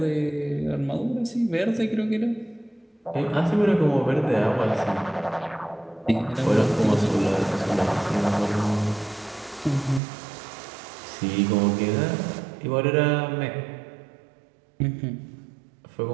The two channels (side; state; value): left; drops out; at 10.0 s